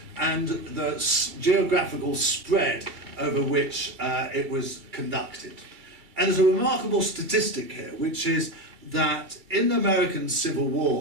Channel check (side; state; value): left; late; 2.3 ms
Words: and the geographical spread over which it was conducted. And there's a remarkable statistic here, which is that in the American Civil